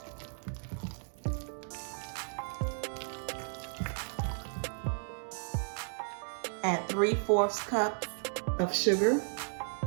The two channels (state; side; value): silent; left; digital silence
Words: Add 3/4 cup of sugar.